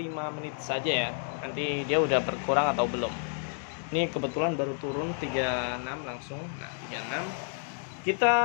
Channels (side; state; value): right; silent; 57 dB below the other